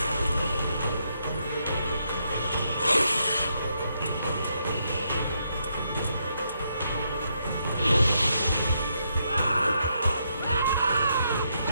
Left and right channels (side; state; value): both; inverted; correlation -0.78